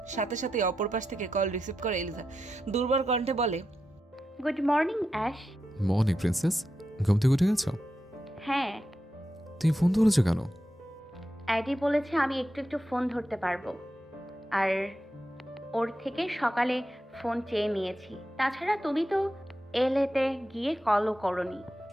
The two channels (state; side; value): normal; both; correlation 0.88